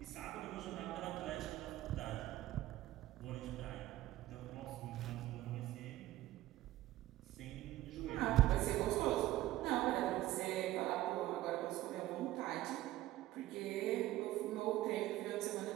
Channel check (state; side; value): quieter; left; 15.3 dB